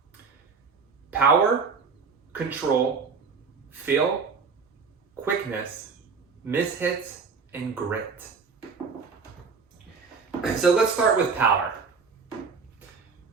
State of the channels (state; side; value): quieter; left; 5.2 dB